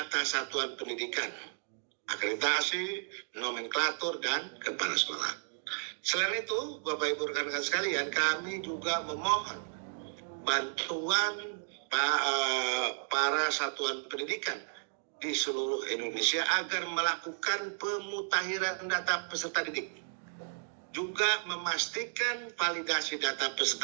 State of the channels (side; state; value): left; silent; digital silence